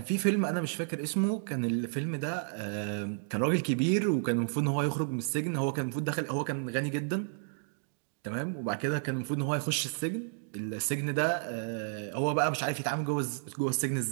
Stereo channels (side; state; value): left; silent; digital silence